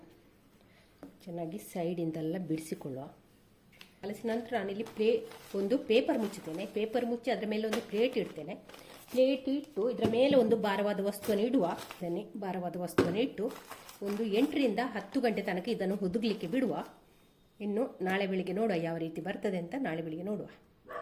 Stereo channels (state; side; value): identical; both; correlation 1.00